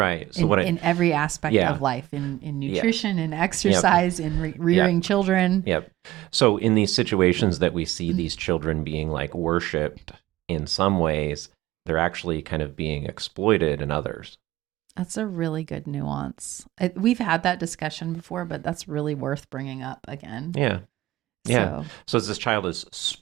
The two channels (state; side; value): quieter; left; 16.3 dB